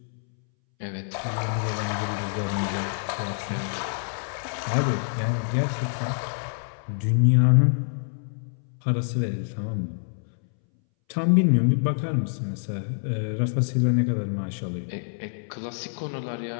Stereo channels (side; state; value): right; silent; 61 dB below the other